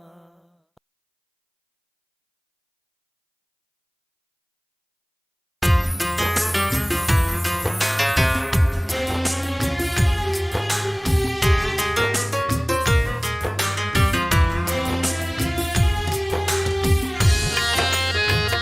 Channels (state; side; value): identical; both; correlation 1.00